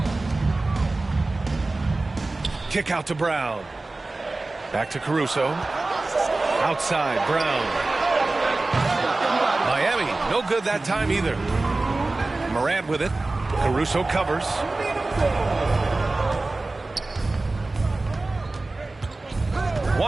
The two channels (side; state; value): left; quieter; 3.2 dB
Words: Kick out to Brown. Back to Caruso. Outside, Brown. Miami, No good that time either. Morant with it. Caruso covers.